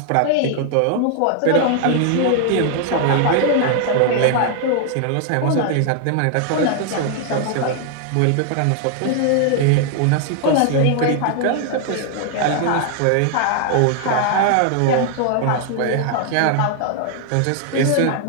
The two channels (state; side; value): different; both; correlation 0.00